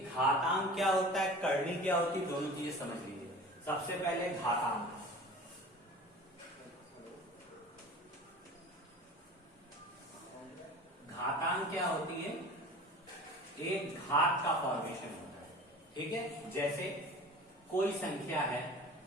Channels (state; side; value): normal; both; correlation 0.39